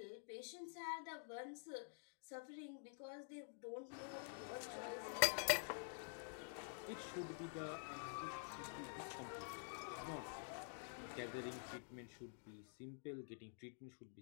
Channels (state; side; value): silent; right; digital silence